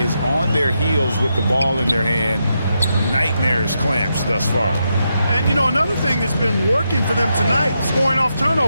on their heels with the ball in their hand. Nightmarish clamps thus far. And, you know, another thing that's been working for them tonight, scoring off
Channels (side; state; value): both; inverted; correlation -0.83